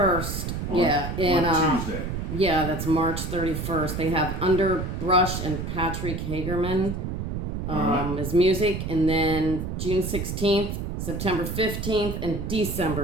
yeah. On Tuesday. Yeah, that's March 31st. They have Underbrush and Patrick Hagerman as music. And then June 16th, September 15th, and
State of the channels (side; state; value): right; noise; rumble, 4 dB below the sound